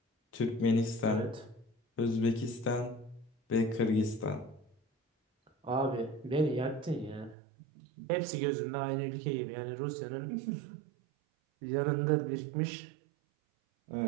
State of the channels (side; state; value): left; drops out; at 7.4 s